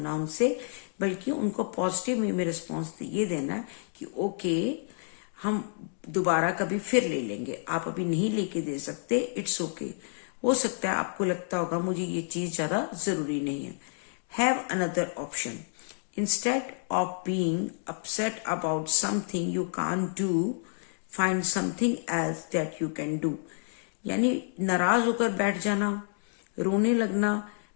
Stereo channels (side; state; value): right; silent; digital silence